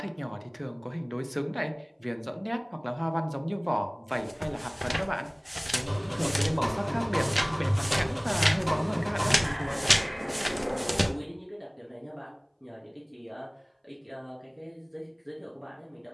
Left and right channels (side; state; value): both; identical; correlation 1.00